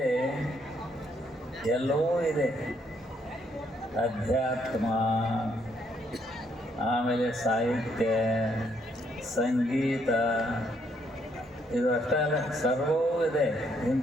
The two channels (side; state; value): both; normal; correlation 0.72